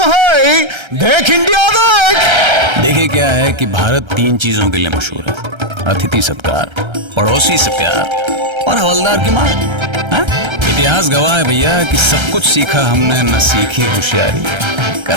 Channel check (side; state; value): left; late; 1.3 ms